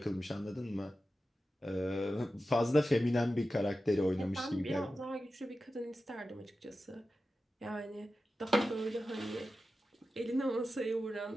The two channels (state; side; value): normal; both; correlation 0.93